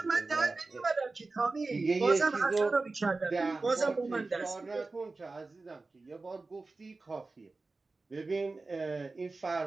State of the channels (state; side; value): quieter; left; 3.6 dB